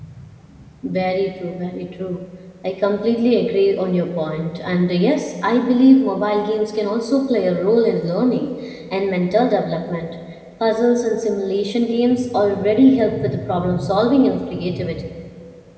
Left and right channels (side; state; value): both; identical; correlation 1.00